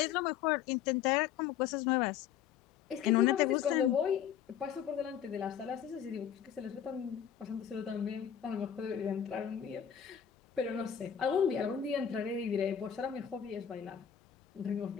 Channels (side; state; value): right; quieter; 9.1 dB